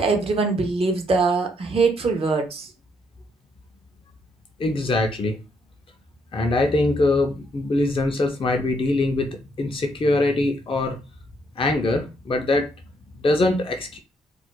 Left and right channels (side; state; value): both; normal; correlation 0.73